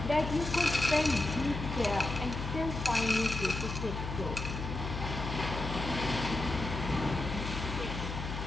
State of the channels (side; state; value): left; noise; hum, 5 dB below the sound